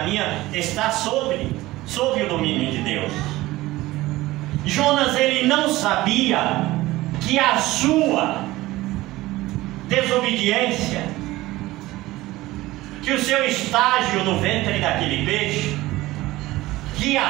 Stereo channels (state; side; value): quieter; left; 18.1 dB